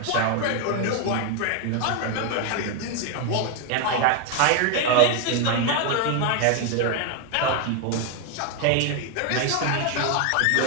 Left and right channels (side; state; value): both; different; correlation 0.01